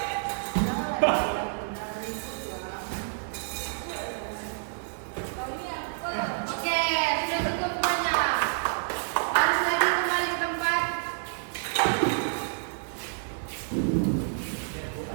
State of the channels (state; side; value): silent; left; digital silence